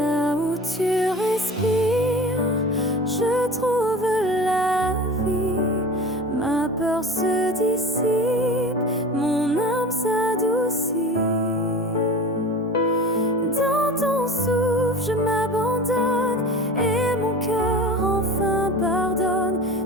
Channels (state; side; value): normal; both; correlation 0.36